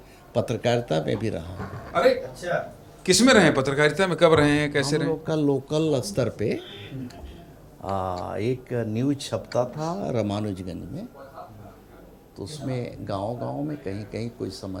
पत्रकारिता में भी रहा हूँ। अरे अच्छा, किस में रहे पत्रकारिता में, कब रहे हैं, कैसे हम रहे? लोग का लोकल स्तर पे एक न्यूज छपता था रामानुजगंज में, तो उसमें गांव-गांव में कहीं कहीं कोई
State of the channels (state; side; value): identical; both; correlation 1.00